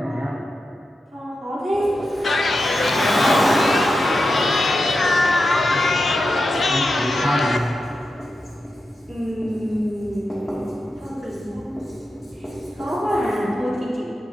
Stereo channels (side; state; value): both; normal; correlation 0.90